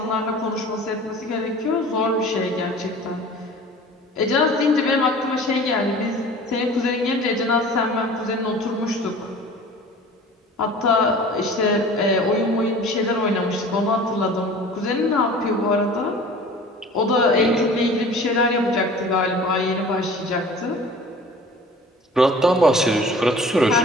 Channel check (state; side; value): normal; both; correlation 0.44